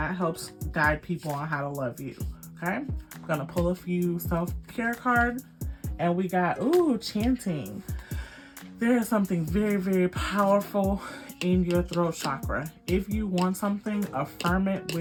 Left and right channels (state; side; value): identical; both; correlation 1.00